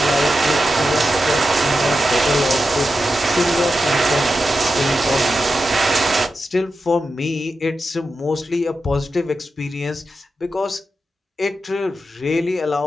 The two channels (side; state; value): both; normal; correlation 0.90